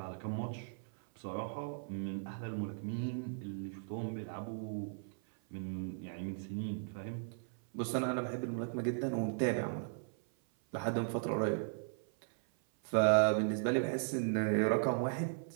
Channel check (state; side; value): silent; left; 53 dB below the other